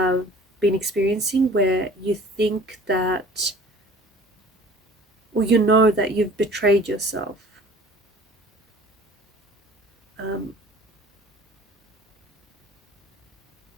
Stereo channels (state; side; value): normal; both; correlation 0.48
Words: been experiencing where you think that, or you know that you've betrayed yourself.